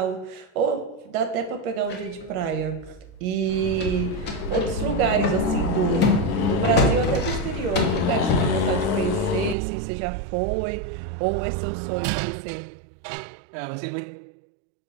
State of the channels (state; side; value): drops out; left; at 9.6 s